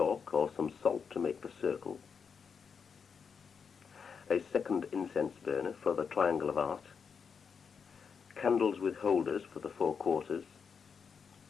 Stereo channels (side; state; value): right; quieter; 6.2 dB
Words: or some salt to make the circle, a second incense burner for the triangle of art, candles with holders for the 4 quarters,